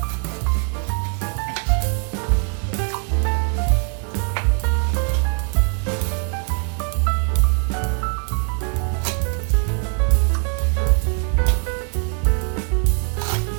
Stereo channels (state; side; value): quieter; left; 39.9 dB